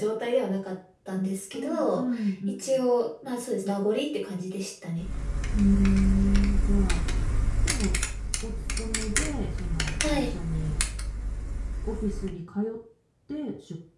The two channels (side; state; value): both; identical; correlation 1.00